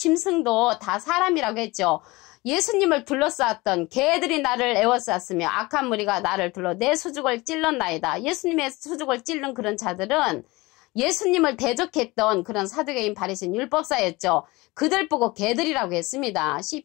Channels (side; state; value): right; quieter; 22.2 dB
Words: 다 사람이라고 했죠. 예수님을 둘러쌌던 개들이 나를 에워쌌으며 악한 무리가 나를 둘러 내 수죽을 찔렀나이다. 예수님의 수죽을 찔른 그런 자들은 예수님을 대적했던 그런 사두개인 바리새인 율법사였죠. 그들 보고 개들이라고 했습니다.